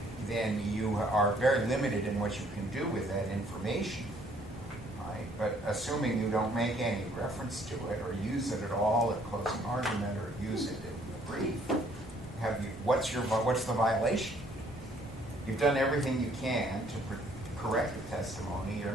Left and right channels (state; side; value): normal; both; correlation 0.63